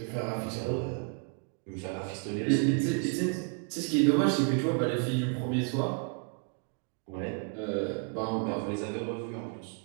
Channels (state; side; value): quieter; left; 37.7 dB